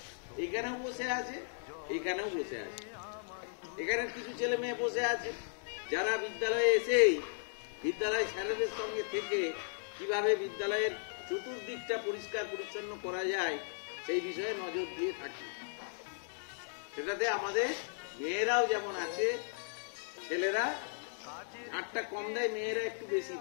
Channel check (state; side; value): silent; right; digital silence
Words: এখানেও বসে আছে, এখানেও বসে আছে। এখানে কিছু ছেলে মেয়ে বসে আছে যারা বিদ্যালয়ে এসেই বিদ্যালয় স্যারেদের সঙ্গে থেকে কিভাবে বিদ্যালয়ের চতুর্দিকটা পরিষ্কার পরিচ্ছন্ন করা যায় সেই বিষয়ে নজর দিয়ে থাকি। সেটাতে আমাদের মেয়েরাও যেমন আছে, ছেলেরা ঝাড়টা কম দেয়, মেয়েরা একটু বেশি